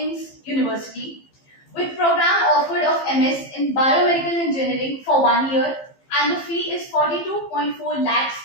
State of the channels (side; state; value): right; late; 15 ms